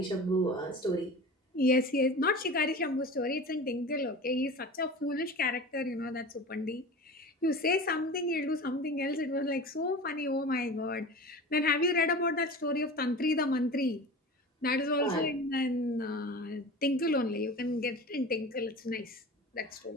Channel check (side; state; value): both; normal; correlation 0.34